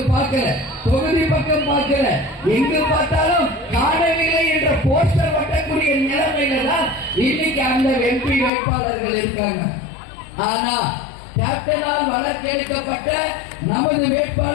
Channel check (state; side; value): drops out; right; at 8.5 s